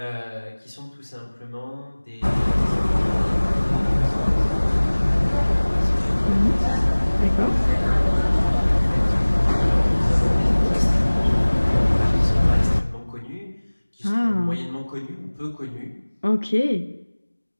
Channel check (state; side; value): inverted; both; correlation -1.00